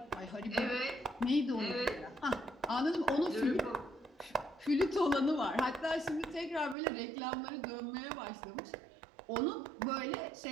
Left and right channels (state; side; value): drops out; left; at 6.8 s